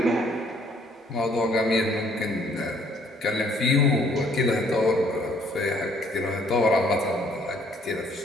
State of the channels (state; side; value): normal; both; correlation 0.63